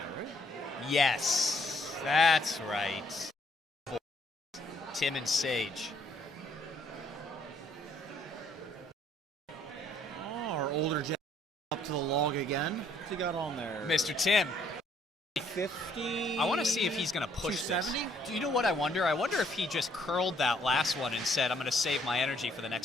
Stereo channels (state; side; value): normal; both; correlation 0.66